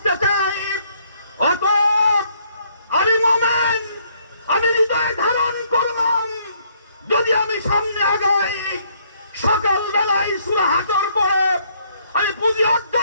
চাই। অতএব আমি মুমিন, আমি হৃদয়ে ধারণ করলাম, যদি আমি সামনে আগাই, সকালবেলায় সূরা হাশর পড়ে আমি পুঁজি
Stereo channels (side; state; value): both; inverted; correlation -0.68